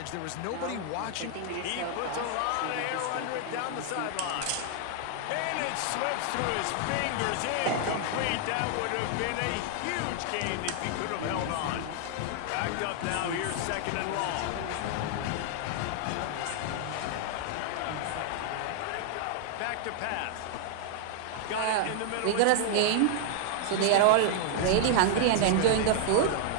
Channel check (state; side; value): different; both; correlation 0.00